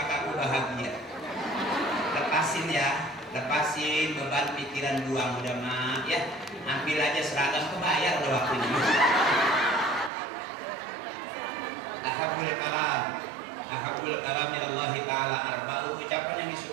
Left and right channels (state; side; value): drops out; left; at 10.1 s